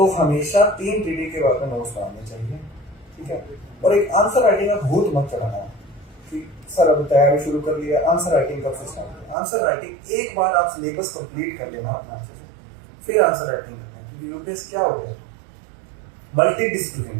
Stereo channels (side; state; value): left; drops out; at 9.3 s